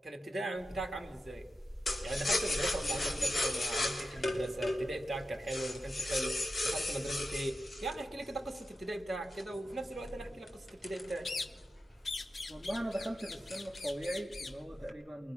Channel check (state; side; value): normal; both; correlation 0.90